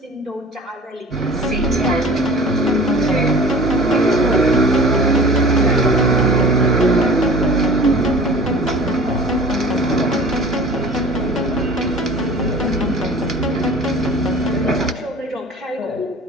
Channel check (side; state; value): both; normal; correlation 0.42